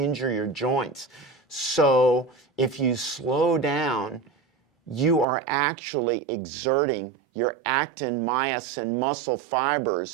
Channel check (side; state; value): left; drops out; at 5.2 s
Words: your joints. So if you slow down, you are actually exerting your actin, myosin, muscle